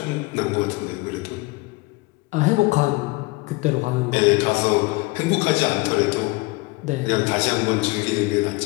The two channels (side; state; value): right; quieter; 24.4 dB